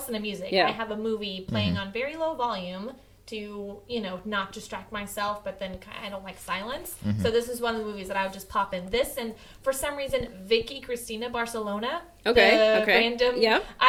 to music. Yeah. I have a movie playing on very low volume to, not distract myself, but then I don't like silence. So this is one of the movies that I would just pop in. This, and for some reason, Vicky Cristina Barcelona. Okay. Random. Yeah.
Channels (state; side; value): identical; both; correlation 1.00